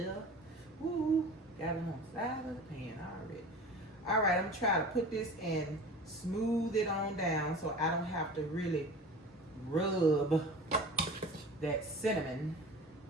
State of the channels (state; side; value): normal; both; correlation 0.38